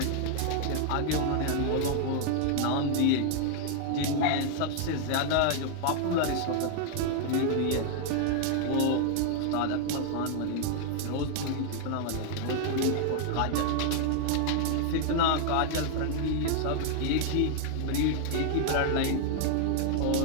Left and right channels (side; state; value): both; different; correlation 0.00